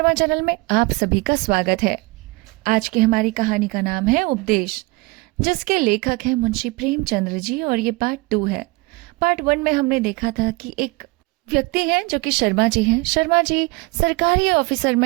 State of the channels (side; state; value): left; quieter; 24.7 dB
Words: channel में आप सभी का स्वागत है। आज की हमारी कहानी का नाम है उपदेश, जिसके लेखक हैं मुंशी प्रेमचंद्र जी, और ये पार्ट 2 है। पार्ट 1 में हमने देखा था कि एक व्यक्ति हैं जो कि शर्मा जी हैं। शर्मा जी सरकारी